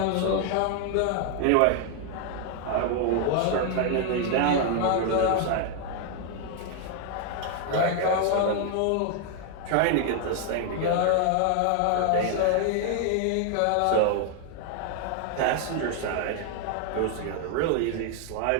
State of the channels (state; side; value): different; both; correlation 0.00